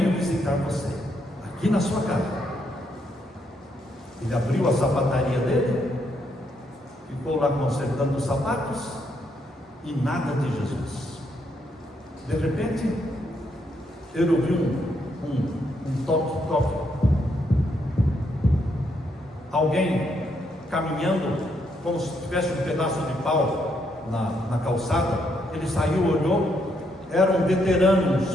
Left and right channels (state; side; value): normal; both; correlation 0.76